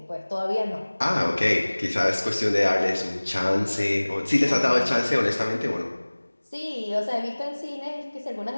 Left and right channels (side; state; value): both; inverted; correlation -1.00